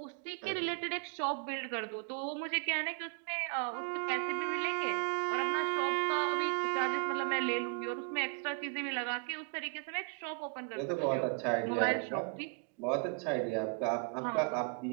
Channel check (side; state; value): left; quieter; 35.7 dB